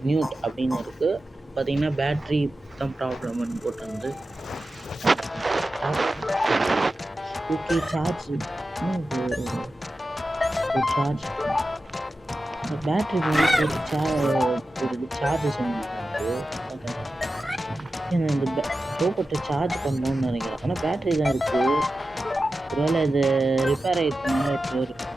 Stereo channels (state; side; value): normal; both; correlation 0.93